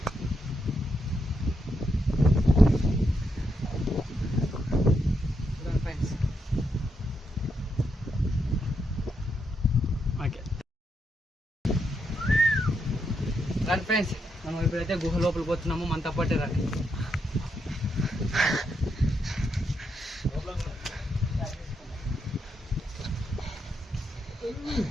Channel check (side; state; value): both; normal; correlation 0.81